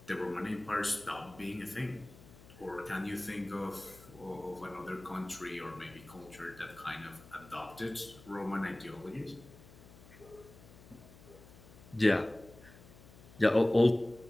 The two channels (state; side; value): noise; left; hum, 20 dB below the sound